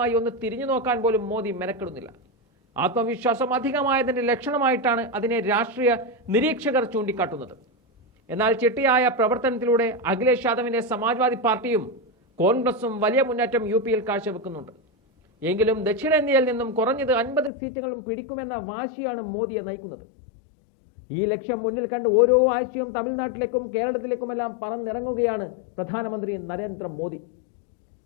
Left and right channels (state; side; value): drops out; right; at 17.5 s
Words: ഒന്ന് തിരിഞ്ഞു നോക്കാൻ പോലും മോദി മെനക്കെടുന്നില്ല. ആത്മവിശ്വാസം അധികമായതിന്റെ ലക്ഷണമായിട്ടാണ് അതിനെ രാഷ്ട്രീയ നിരീക്ഷകർ ചൂണ്ടിക്കാട്ടുന്നത്. എന്നാൽ ചിട്ടയായ പ്രവർത്തനത്തിലൂടെ അഖിലേഷ് യാദവിന്റെ സമാജ്വാദി പാർട്ടിയും കോൺഗ്രസും വലിയ മുന്നേറ്റം യു.പിയിൽ കാഴ്ചവെക്കുന്നുണ്ട്. എങ്കിലും ദക്ഷിണേന്ത്യയിൽ നിന്നും കുറഞ്ഞത് 50 സീറ്റുകളും പിടിക്കുമെന്ന വാശിയാണ് മോദിയെ നയിക്കുന്നത്. ഈ ലക്ഷ്യം മുന്നിൽ കണ്ട് ഓരോ ആഴ്ചയും തമിഴ്നാട്ടിലേക്കും കേരളത്തിലേക്കുമെല്ലാം പറന്നിറങ്ങുകയാണ് പ്രധാനമന്ത്രി നരേന്ദ്രമോദി.